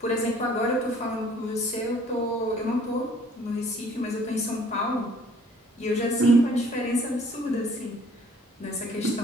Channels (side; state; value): both; normal; correlation 0.56